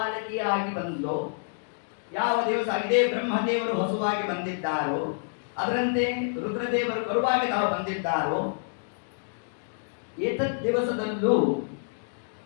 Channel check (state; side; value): silent; right; digital silence